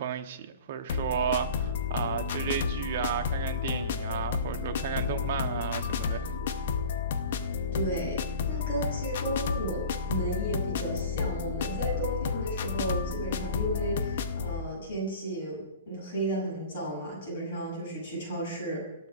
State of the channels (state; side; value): inverted; both; correlation -0.38